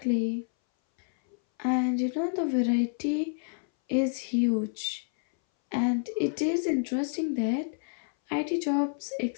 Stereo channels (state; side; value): silent; right; 59 dB below the other